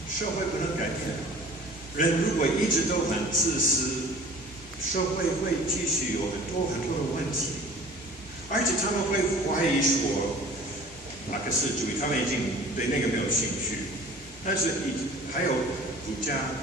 社会不能改变。人如果一直都很自私，社会会继续有很多的问题，而且他们会怀疑说马克思主义，他们已经对那个没有兴趣。但是还有儒家、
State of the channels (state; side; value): normal; both; correlation 0.45